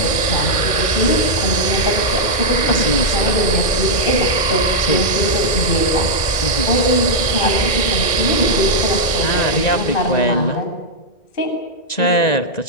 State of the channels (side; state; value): right; late; 1.6 ms